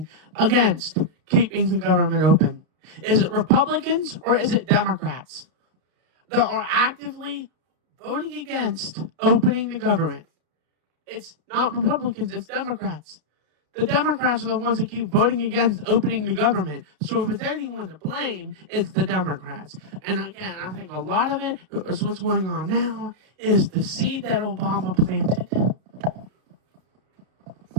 against keeping the government open? Is it Republicans or is it Democrats that are actively voting against opening the government? It's not Republicans, it's Democrats. The Democrats are the ones that keep voting against opening the government. So if it's anyone to blame, it's the Democrats. And again, I think a lot of it is what's going on now is the seed that Obama planted.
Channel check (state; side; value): late; left; 32 ms